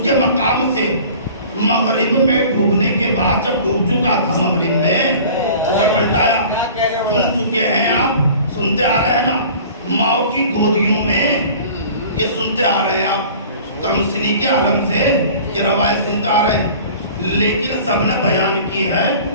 کے مقام سے مغرب میں ڈوبنے کے بعد جب ڈوب چکا تھا مغرب میں اسے پلٹایا. سن چکے ہیں آپ، سنتے آ رہے ہیں نا، ماؤں کی گودیوں میں یہ سنتے آ رہے ہیں آپ، کم سنی کے عالم سے یہ روایت سنتے آ رہے ہیں. لیکن سب نے بیان کی ہے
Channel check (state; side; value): inverted; both; correlation -0.45